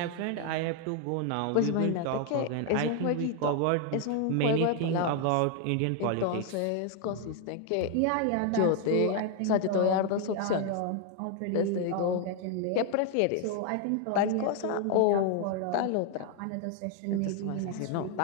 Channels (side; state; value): both; different; correlation 0.00